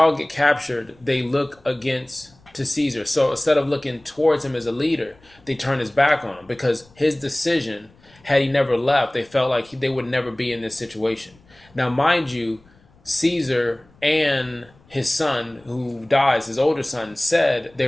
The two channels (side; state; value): left; noise; rumble, 29 dB below the sound